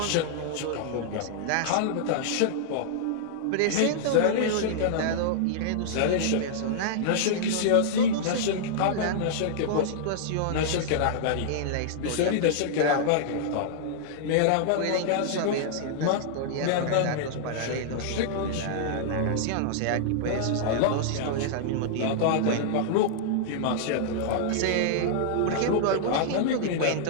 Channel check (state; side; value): different; both; correlation -0.01